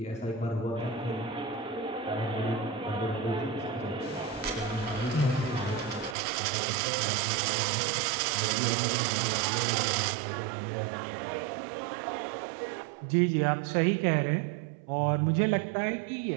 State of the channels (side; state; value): left; drops out; at 6.2 s